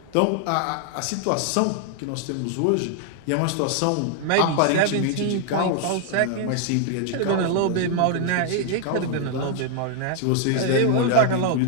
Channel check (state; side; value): different; both; correlation 0.00